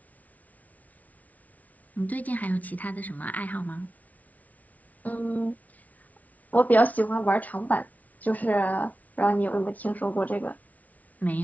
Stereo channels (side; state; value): right; late; 0.072 ms